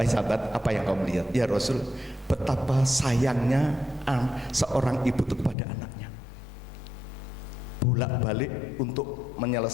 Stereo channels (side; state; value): right; drops out; at 5.6 s